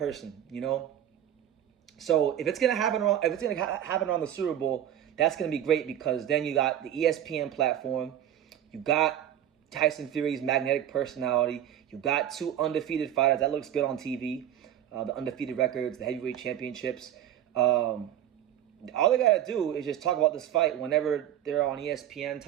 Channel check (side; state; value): left; quieter; 11.0 dB